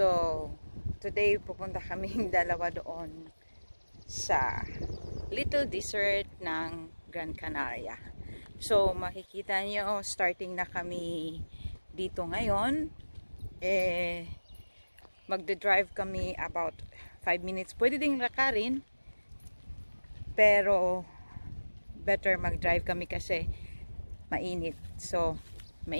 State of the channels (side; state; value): both; inverted; correlation -1.00